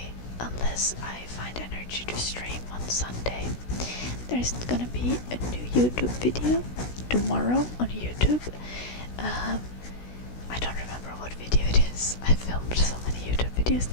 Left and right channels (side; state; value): right; late; 16 ms